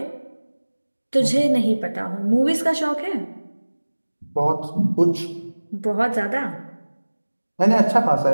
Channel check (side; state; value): both; inverted; correlation -1.00